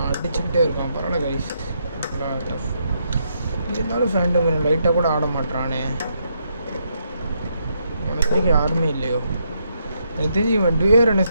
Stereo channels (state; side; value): inverted; both; correlation -0.78